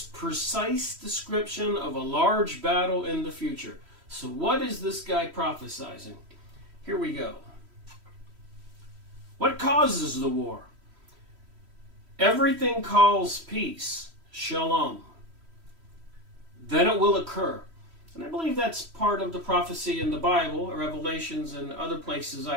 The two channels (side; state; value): left; late; 3.1 ms